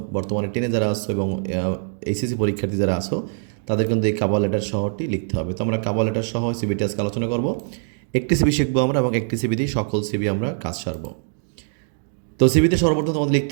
বর্তমানে 10-এ যারা আছো এবং এইচএসসি পরীক্ষার্থী যারা আছো, তাদের কিন্তু এই কাভার লেটার সহটি লিখতে হবে। তো আমরা কাভার লেটার সহ সিবিটি আজকে আলোচনা করব। একটি সিবি শিখবো আমরা এবং একটি সিবি দিয়ে সকল সিবি আমরা কাজ সারবো। তো সিবিতে সর্বপ্রথম তোমাদের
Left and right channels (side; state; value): left; silent; 64 dB below the other